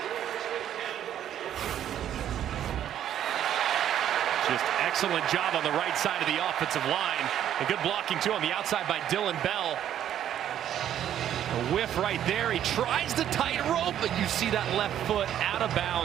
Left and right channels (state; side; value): quieter; left; 10.6 dB